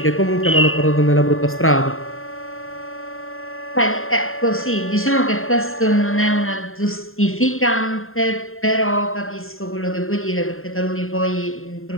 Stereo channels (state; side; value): late; right; 0.61 ms